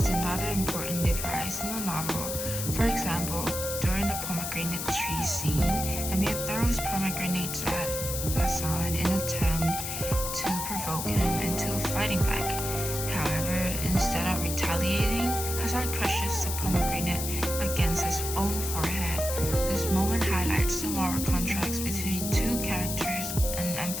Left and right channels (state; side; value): noise; left; hiss, 4 dB below the sound